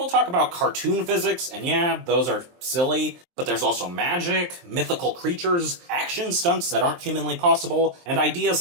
talk about cartoon physics, and yeah, those are silly, but there's also magic, mythical creatures, action stunts that aren't humanly possible, and ideas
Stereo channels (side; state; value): left; late; 23 ms